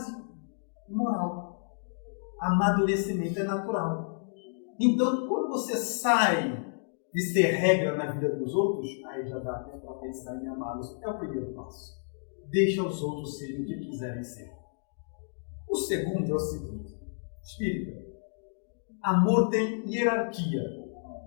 moral. Amadurecimento é natural. Então, quando você sai de ser regra na vida dos outros, aí já dá até para pensar em amá-los. É o primeiro passo. Deixa os outros serem o que quiserem ser. O segundo é o seguinte: espírita, amor tem hierarquia.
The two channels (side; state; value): right; silent; digital silence